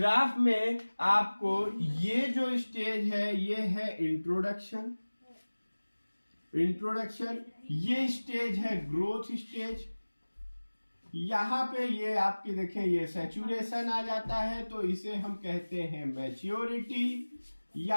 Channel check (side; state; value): both; inverted; correlation -1.00